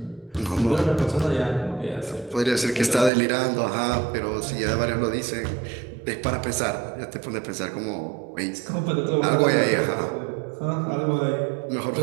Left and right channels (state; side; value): drops out; left; at 3.1 s